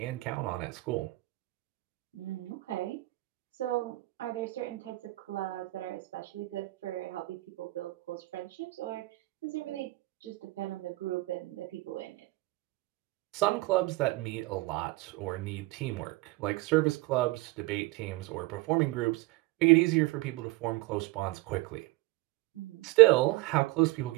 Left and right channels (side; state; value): left; quieter; 21.2 dB